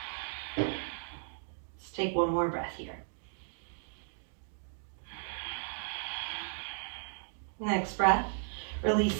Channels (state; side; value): silent; left; digital silence